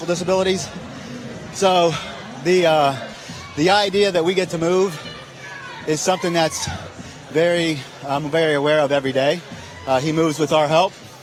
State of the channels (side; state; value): both; identical; correlation 1.00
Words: So the idea that we get to move is something that's I'm very aware of every day. He moves with our help,